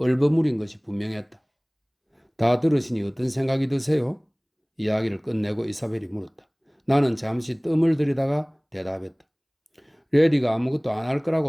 것이 분명했다. 다 들으시니 어떤 생각이 드세요? 이야기를 끝내고 이사벨이 물었다. 나는 잠시 뜸을 들이다가 대답했다. 레리가 아무것도 안 할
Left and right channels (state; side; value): identical; both; correlation 1.00